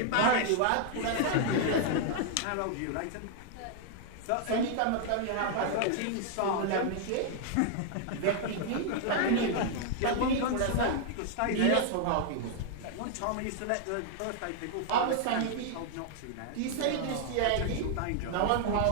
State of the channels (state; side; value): different; both; correlation 0.00